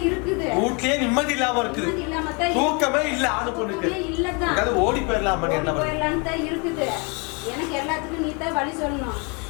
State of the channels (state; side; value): quieter; right; 32.3 dB